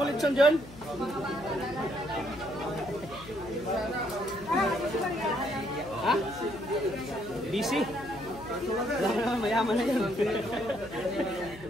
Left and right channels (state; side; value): noise; left; hum, 17 dB below the sound